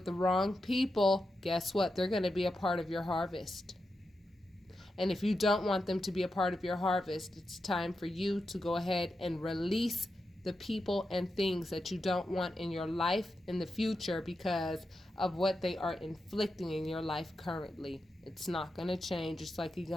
the wrong people, guess what? They're going to be a part of your harvest. And if you don't want them to be a part of your harvest, it's time for you to go ahead and release the people and things that you don't want in your life in the future because of what they are inflicting in your life currently. It's not going to change. It's like you're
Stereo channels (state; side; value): normal; both; correlation 0.88